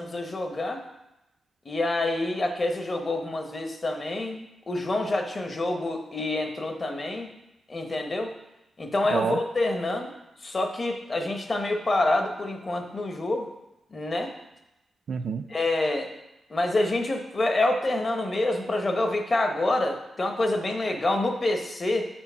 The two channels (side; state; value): both; normal; correlation 0.90